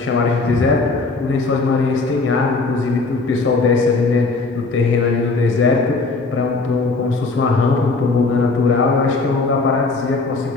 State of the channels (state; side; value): quieter; right; 3.7 dB